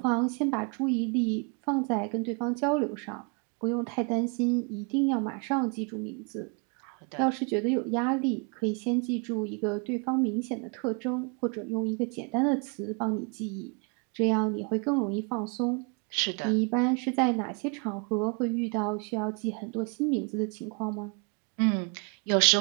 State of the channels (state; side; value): quieter; left; 35.4 dB